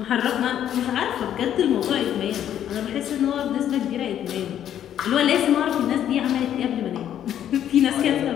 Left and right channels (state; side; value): quieter; right; 10.4 dB